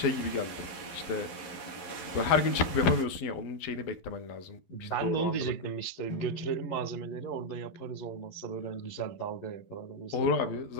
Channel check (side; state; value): right; late; 11 ms